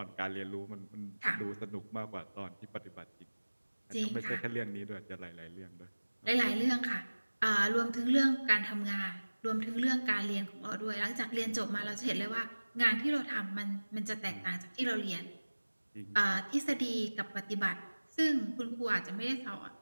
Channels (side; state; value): both; inverted; correlation -1.00